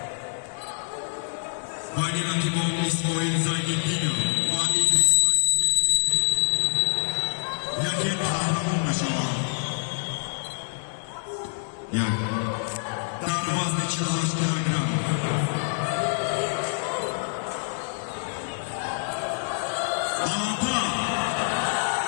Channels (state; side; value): silent; right; digital silence